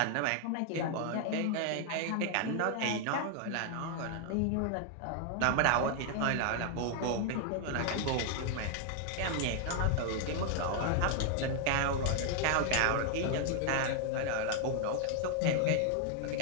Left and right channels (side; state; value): both; different; correlation 0.00